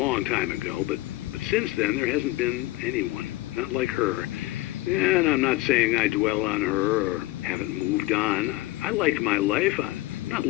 time ago, but since then there hasn't been anyone, not like her. And I'm not saying I dwell on her or haven't moved on. I like my life. I'm not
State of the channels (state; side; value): quieter; right; 18.3 dB